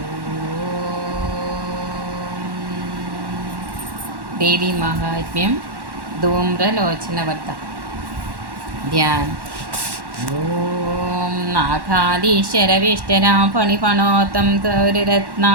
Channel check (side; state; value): left; late; 1.1 ms